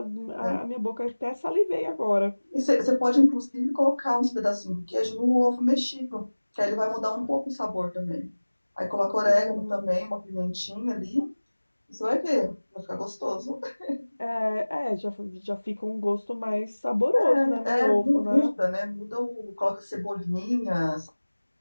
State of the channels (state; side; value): inverted; both; correlation -1.00